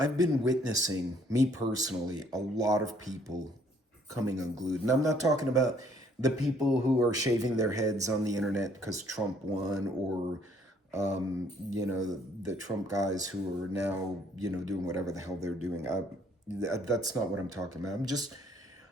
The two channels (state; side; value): normal; both; correlation 0.63